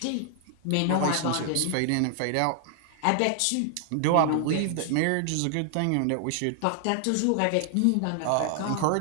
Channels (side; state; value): both; different; correlation 0.00